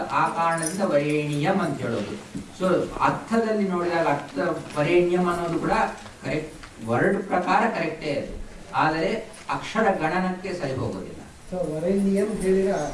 ಆ ಕಾರಣದಿಂದ ವರೇಣ್ಯಂ ಅಂತ ಹೇಳೋದು. ಸೊ ಅರ್ಥದಲ್ಲಿ ನೋಡಿದಾಗ ಅರ್ಥ ವರೇಣ್ಯಂ ಅನ್ನೋದು ಕೂಡ ಕರೆಕ್ಟ್, ವರ್ಡ್ ಪ್ರಕಾರ ಕರೆಕ್ಟೇ ಅದು, ಆದರೆ ಅಕ್ಷರ ಗಣನಕ್ಕೆ ಸರಿ ಹೋಗೋದಿಲ್ಲ.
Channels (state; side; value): identical; both; correlation 1.00